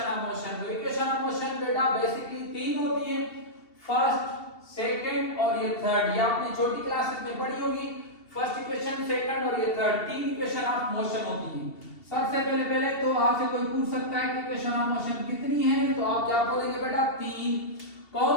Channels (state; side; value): late; right; 2.7 ms